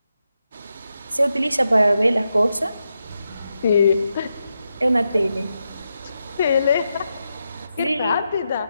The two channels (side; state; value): both; inverted; correlation -0.86